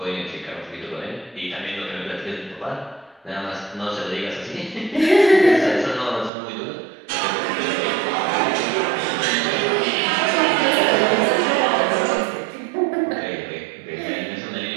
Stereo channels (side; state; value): left; drops out; at 6.3 s